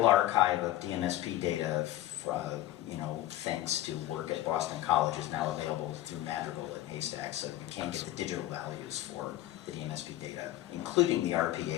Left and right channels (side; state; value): right; quieter; 14.7 dB